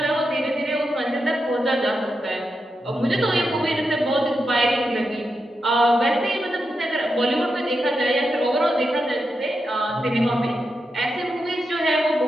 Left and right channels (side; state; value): both; normal; correlation 0.87